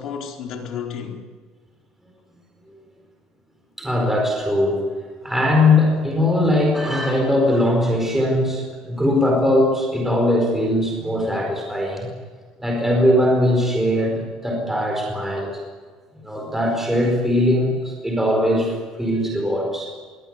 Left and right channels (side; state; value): both; normal; correlation 0.66